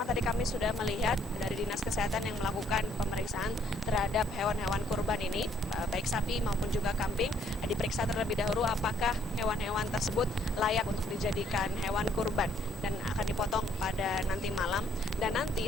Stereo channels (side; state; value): both; normal; correlation 0.67